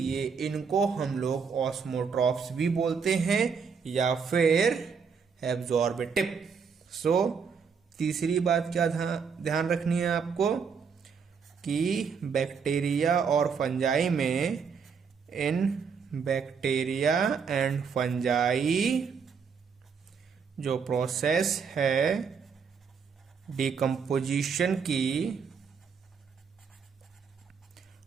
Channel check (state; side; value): quieter; left; 6.0 dB